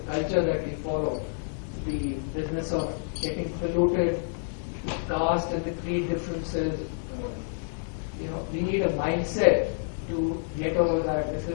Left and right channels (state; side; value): silent; right; digital silence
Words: culture that we follow? The business of getting polluted, the caste and the creed differences. We need a mindset to get over that. This